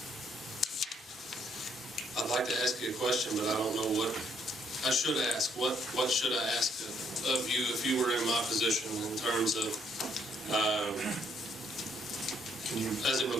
I'd like to ask you a question, but I don't know what I should ask. What should I ask of you if you were in my position in terms of, as it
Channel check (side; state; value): both; normal; correlation 0.69